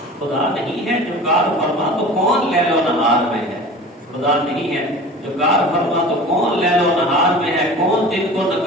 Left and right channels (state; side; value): normal; both; correlation 0.38